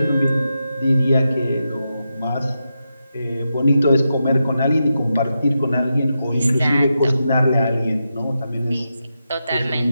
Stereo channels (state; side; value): inverted; both; correlation -0.88